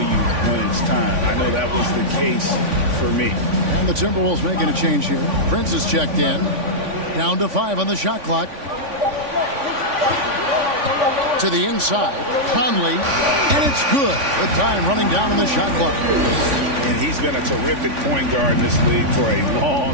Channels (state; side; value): late; left; 3.5 ms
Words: when it's time. I know that was the case for me. And the Timberwolves making a change here. Prince is checked in. Down to 5 on the shot clock. To the inside. Conley. And it's good. The time running down on the shot clock. And he's been a terrific point guard in this league for a